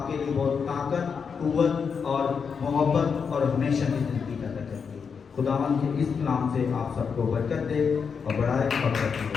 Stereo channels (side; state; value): right; quieter; 6.1 dB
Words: کے لیے بہت طاقت، قوت اور محبت اور ہمیشہ کی زندگی پیدا کرتی ہے۔ خداوند کے اس کلام سے آپ سب کو برکت دے اور بڑھائے اور برکت